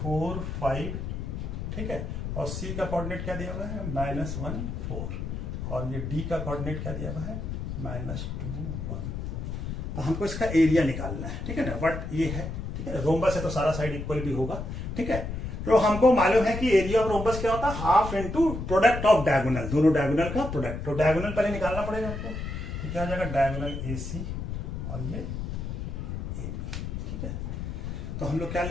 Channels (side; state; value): left; noise; rumble, 5 dB below the sound